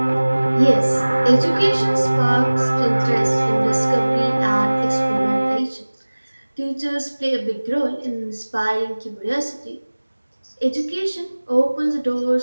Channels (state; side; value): inverted; both; correlation -1.00